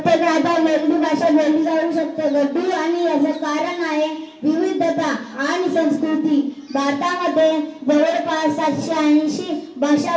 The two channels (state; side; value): identical; both; correlation 1.00